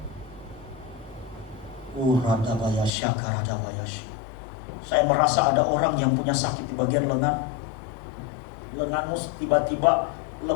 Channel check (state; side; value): drops out; right; at 2.9 s